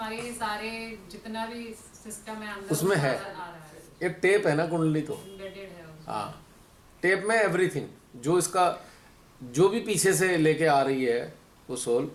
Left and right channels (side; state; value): both; identical; correlation 1.00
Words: सारे जितना भी सिस्टम है अंदर उसमें है। आ रहा है, एक टेप है ना कुंडली, तो एम्बेडेड है उसमें। हाँ, टेप में एवरीथिंग, जो इसका जो भी पीछे से लेके आ रही है वो सोल,